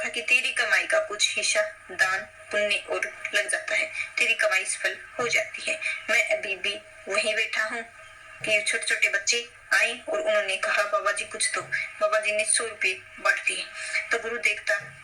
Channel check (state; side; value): identical; both; correlation 1.00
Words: कि तेरी कमाई का कुछ हिस्सा दान पुण्य और लग जाता है, तेरी कमाई सफल हो जाती है। मैं अभी भी वहीं बैठा हूँ कि छोटे छोटे बच्चे आए और उन्होंने कहा, बाबा जी कुछ दो। बाबा जी ने 100 रुपए बांट दिए। तो गुरु देखता